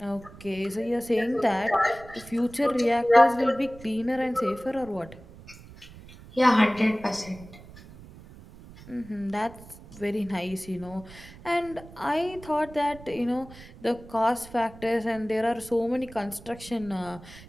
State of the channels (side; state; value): right; noise; rumble, 19 dB below the sound